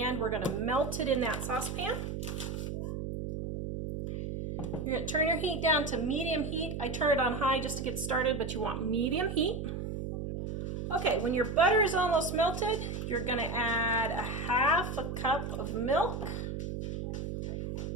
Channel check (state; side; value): noise; right; hum, 5 dB below the sound